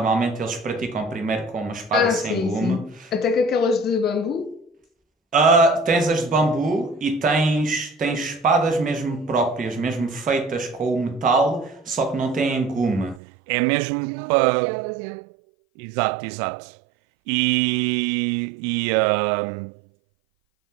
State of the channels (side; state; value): left; drops out; at 13.2 s